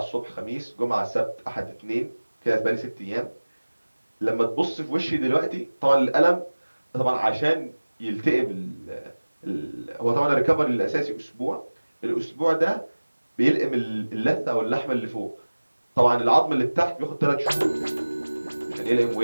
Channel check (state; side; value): inverted; both; correlation -1.00